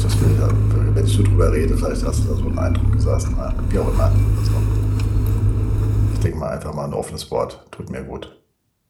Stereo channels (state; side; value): identical; both; correlation 1.00